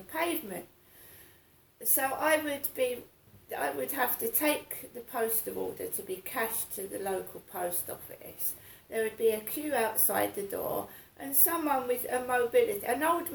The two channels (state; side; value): identical; both; correlation 1.00